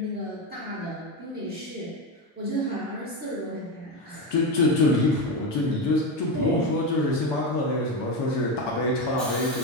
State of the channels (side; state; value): both; normal; correlation 0.15